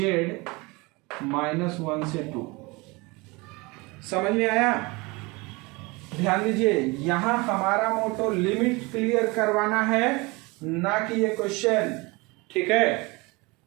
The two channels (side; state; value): left; quieter; 25.3 dB